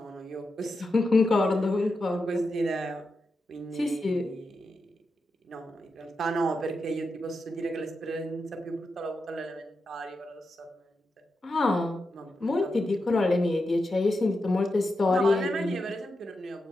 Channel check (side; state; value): both; normal; correlation 0.88